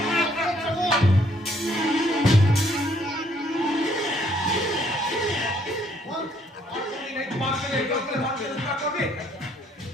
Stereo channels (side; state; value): both; normal; correlation 0.66